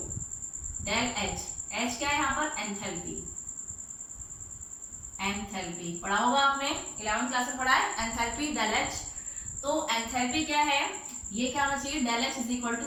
Del H, H क्या है यहाँ पर, एंथैल्पी। एंथैल्पी पढ़ा होगा आपने, 11th क्लास में पढ़ा है एंथैल्पी, डेल एच। तो एंथैल्पी क्या है, ये क्या होना चाहिए, del H is equal to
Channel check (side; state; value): both; identical; correlation 1.00